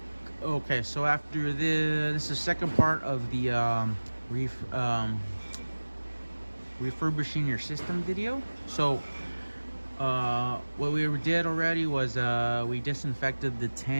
Okay, so after this is the second part of the refurbishing your system video. So what we did already was we disinfected the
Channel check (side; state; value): both; inverted; correlation -1.00